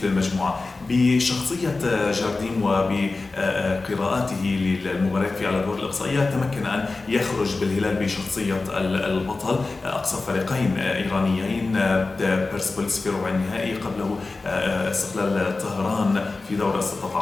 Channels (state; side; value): quieter; right; 3.6 dB